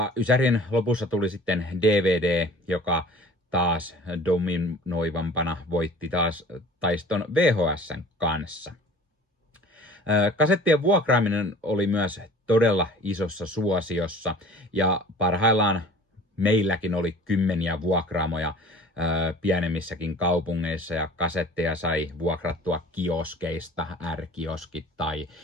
Ysärin lopussa tuli sitten DVD, joka taas dominoivampana voitti taas taiston VHS:n kanssa. Kasettien vuokraaminen oli myös todella isossa suosiossa ja parhaillaan meilläkin oli kymmeniä vuokraamoja pienemmissäkin kaupungeissa ja kasetteja sai vuokrattua kioskeista, R-kioskit tai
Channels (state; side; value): normal; both; correlation 0.45